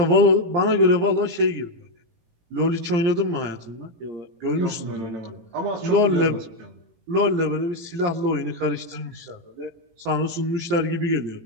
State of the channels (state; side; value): late; left; 18 ms